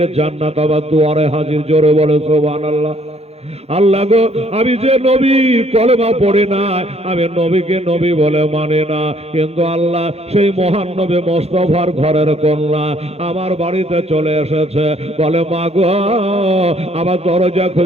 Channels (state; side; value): late; left; 0.30 ms